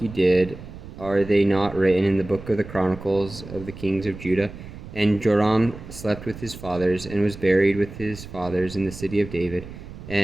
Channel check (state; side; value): noise; right; rumble, 14 dB below the sound